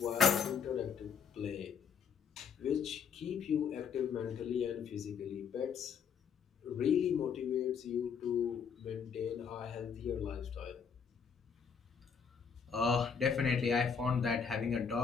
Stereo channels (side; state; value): right; quieter; 6.6 dB